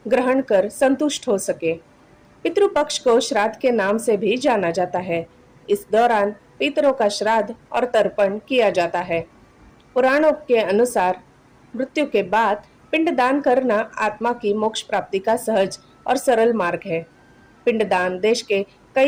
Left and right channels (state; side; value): identical; both; correlation 1.00